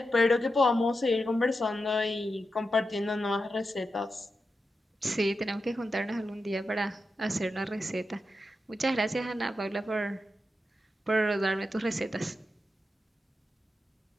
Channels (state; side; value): normal; both; correlation 0.89